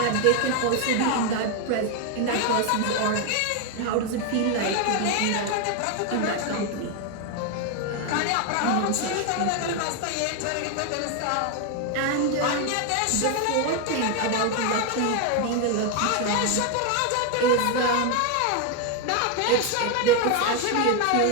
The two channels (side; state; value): both; different; correlation 0.01